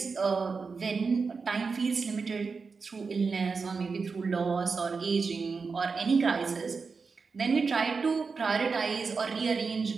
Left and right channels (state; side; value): quieter; left; 4.8 dB